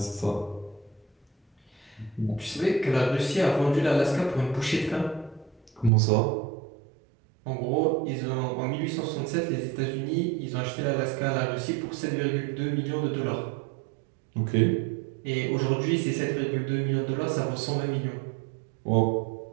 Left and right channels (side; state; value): left; drops out; at 5.9 s